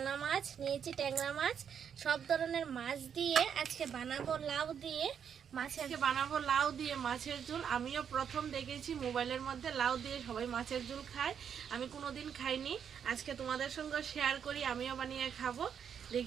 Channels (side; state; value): left; quieter; 7.9 dB